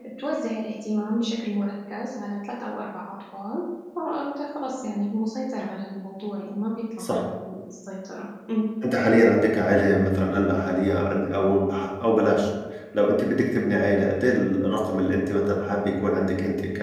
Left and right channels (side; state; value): both; identical; correlation 1.00